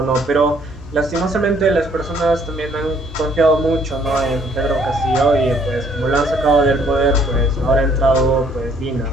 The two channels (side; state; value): both; normal; correlation 0.63